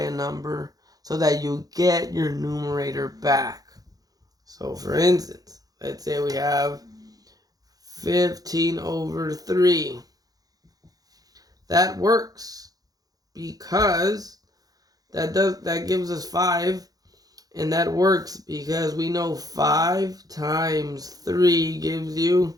number so that you get your numerator back. So for instance, let's say we have 15 over 3. That works because that gives us 5. And that works because we know 5 times 3 gives you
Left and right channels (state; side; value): late; left; 0.18 ms